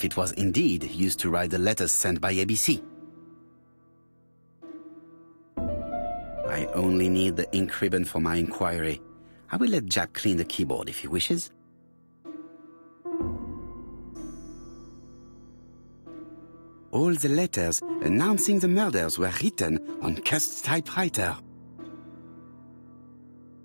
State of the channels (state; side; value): inverted; both; correlation -1.00